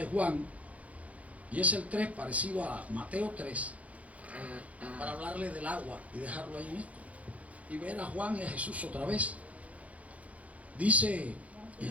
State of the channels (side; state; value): left; late; 0.067 ms